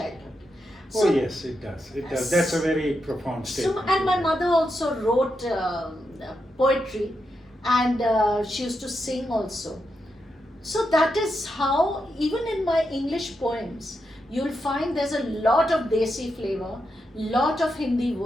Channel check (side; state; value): both; normal; correlation 0.85